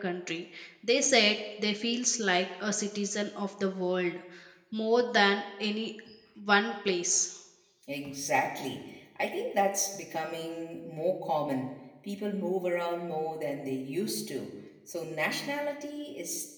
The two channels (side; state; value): both; identical; correlation 1.00